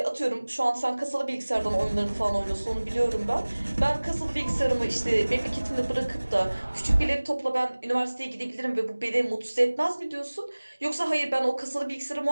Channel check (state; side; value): inverted; both; correlation -1.00